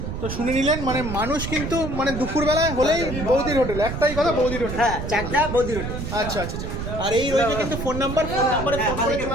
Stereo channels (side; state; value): right; noise; rumble, 5 dB below the sound